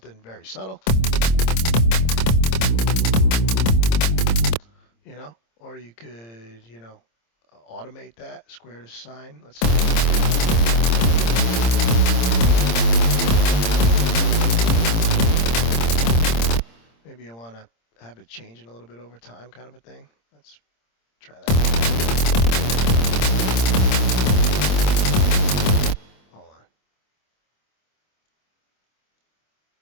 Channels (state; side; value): late; right; 26 ms